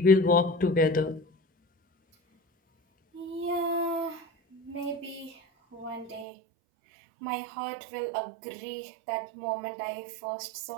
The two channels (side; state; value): left; drops out; at 6.2 s